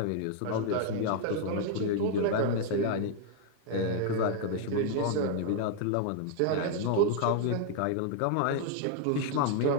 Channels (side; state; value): both; different; correlation 0.00